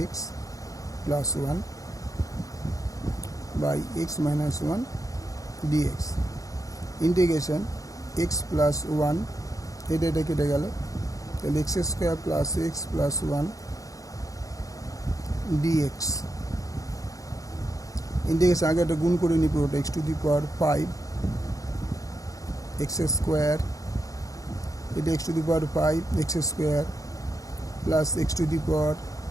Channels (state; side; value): late; right; 0.17 ms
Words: x plus 1 by x minus 1 dx integration x plus 1 এটা কেটে গেল তাহলে x square plus x plus 1 dx integration আগে একটা গুণ করে নিই পুরোটা x to the power 5 x square এটা x to the power 5 x square plus x to the power